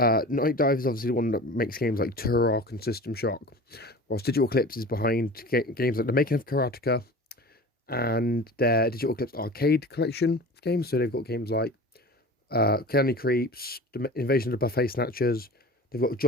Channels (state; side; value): normal; both; correlation 0.37